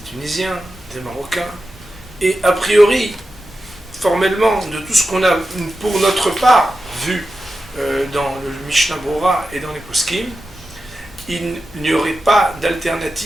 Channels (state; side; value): normal; both; correlation 0.91